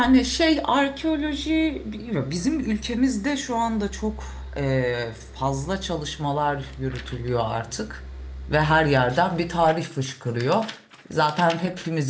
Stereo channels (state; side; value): identical; both; correlation 1.00